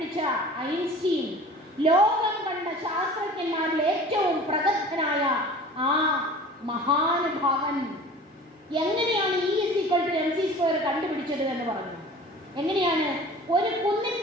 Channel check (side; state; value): both; normal; correlation 0.42